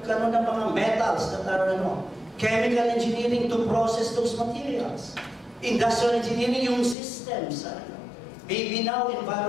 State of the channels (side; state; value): right; drops out; at 7.0 s